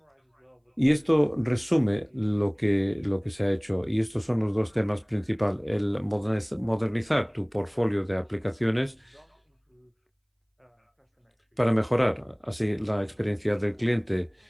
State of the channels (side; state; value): both; identical; correlation 1.00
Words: Y esto resume lo que se ha hecho. Y estos son los dos temas principales. El modernizar tu portfolio de aplicaciones para mejorar así la experiencia del cliente.